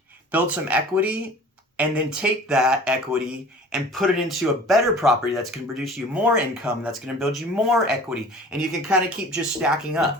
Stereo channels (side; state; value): both; normal; correlation 0.44